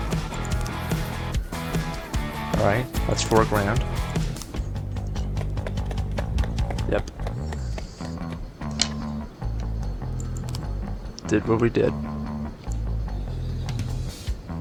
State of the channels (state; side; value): identical; both; correlation 1.00